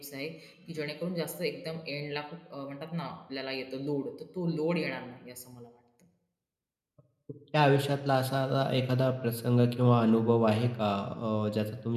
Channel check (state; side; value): identical; both; correlation 1.00